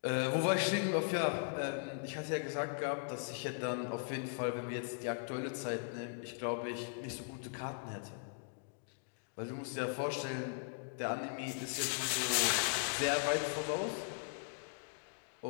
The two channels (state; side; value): silent; right; digital silence